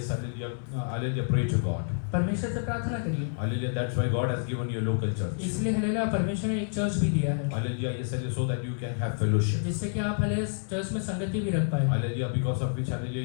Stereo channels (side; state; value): right; silent; 59 dB below the other